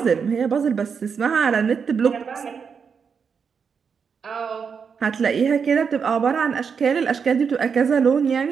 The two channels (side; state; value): left; quieter; 6.3 dB